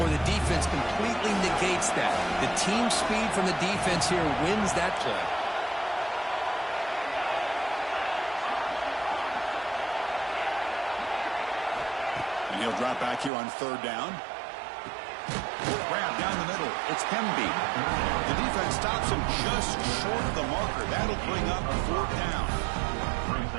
or the defense completely negates that. The team speed from the defense here wins that play. And he'll drop back here on 3rd down. Grab down the middle. It's Hemby. The defense stops him just short of the marker. That'll bring up 4th down.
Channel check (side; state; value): left; drops out; at 13.3 s